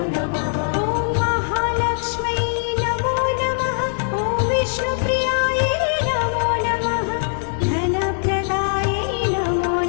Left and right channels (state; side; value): silent; right; digital silence